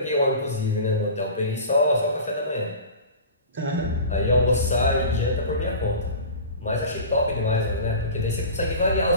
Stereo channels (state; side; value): inverted; both; correlation -0.36